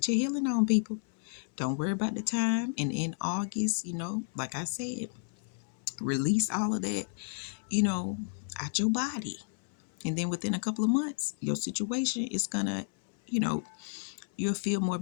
your healing on, people. Don't worry about the time. And in August, like I said, release all of that, out your body. And then within a couple of months, your situation is gonna, you know, you'll feel more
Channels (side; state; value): right; silent; 57 dB below the other